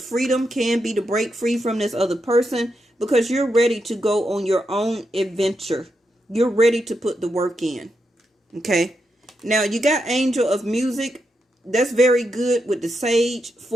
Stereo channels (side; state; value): both; normal; correlation 0.84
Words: freedom, can be to break free from this other person, because you're ready to go on your own adventure. You're ready to put the work in. Okay. Now you got angel of music. That's very good with the sage